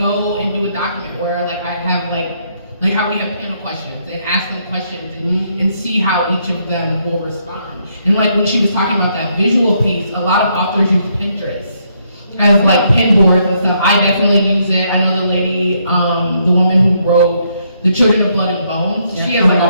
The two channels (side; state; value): both; inverted; correlation -0.74